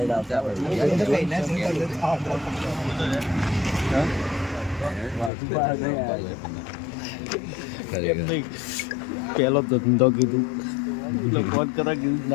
પેલો ધંધો કીધું એટલે ફોન કરા કીધું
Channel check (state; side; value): drops out; right; at 5.3 s